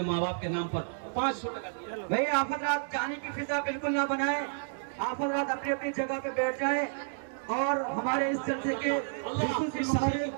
माँ बाप के नाम पर 500 टका दिया। भाई आप हजरात जाने की फिजा बिल्कुल ना बनाए, आप हजरात अपनी अपनी जगह पे बैठ जाएं और हमारे इस जलसे के अल्लाह खुसूसी इस साल मुबारक की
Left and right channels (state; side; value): silent; left; digital silence